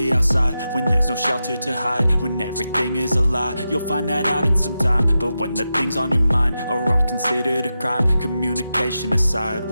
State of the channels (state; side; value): inverted; both; correlation -0.90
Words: outside when there's no shelter to hide. When everything is a lie, you'll find that out in some time. But when the things on your mind are all considered a crime, communication aside,